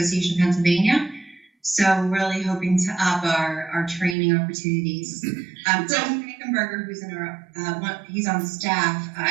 of Pennsylvania. So we're really hoping to up our training opportunities. Tom Frankenberger, who's he's on staff. I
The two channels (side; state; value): left; drops out; at 4.2 s